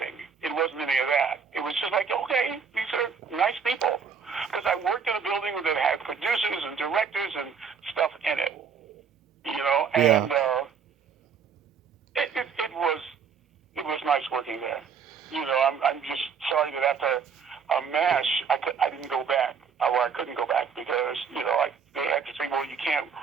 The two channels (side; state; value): left; quieter; 6.4 dB